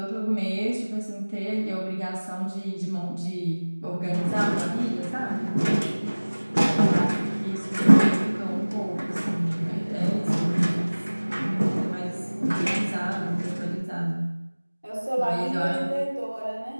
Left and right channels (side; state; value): both; inverted; correlation -1.00